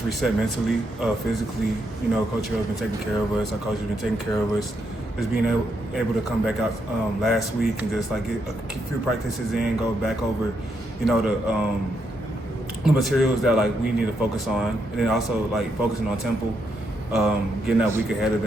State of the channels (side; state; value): both; normal; correlation 0.79